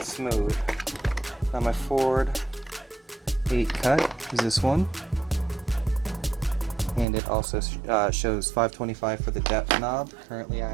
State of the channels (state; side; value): drops out; left; at 7.1 s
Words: smooth. Now my Ford 8 cut is this one, and it also shows 525 for the depth knob. Currently I